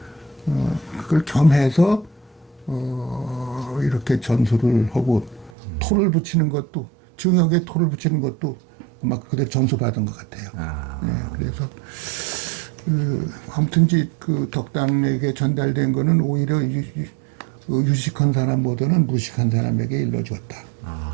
그걸 겸해서 이렇게 전수를 하고 토를 붙이는 것도 증역에 토를 붙이는 것도 막 그대로 전수받은 것 같아요. 네, 그래서 아무튼 그 덕당에게 전달된 거는 오히려 유식한 사람보다는 무식한 사람에게 일러주었다.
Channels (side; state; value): left; drops out; at 5.5 s